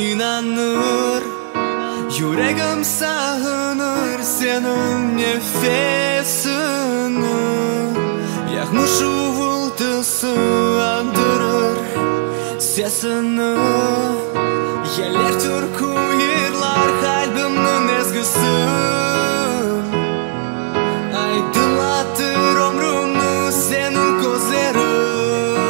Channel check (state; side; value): silent; left; 60 dB below the other